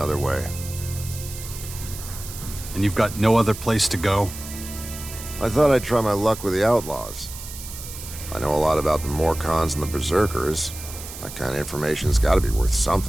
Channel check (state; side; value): noise; right; hiss, 12 dB below the sound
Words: way. And you've got no other place to go? I thought I'd try my luck with the Outlaws. I know a lot about the Morcons and the Berserkers. That kind of information's gotta be worth